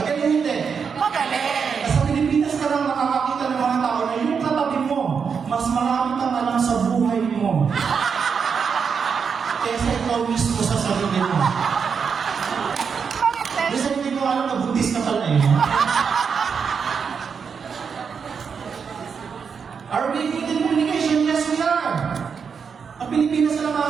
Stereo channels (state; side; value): quieter; left; 6.2 dB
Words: hindi. Magaling. Sa Pilipinas ka lang makakakita ng mga tao na yung katabi mo, mas marami kang alam sa buhay mo. Kesa ikaw mismo sa sarili mo. Kasi hindi ko alam na buntis ka pala eh. Are we good in communication? Yes, we are. Ang Pilipinas na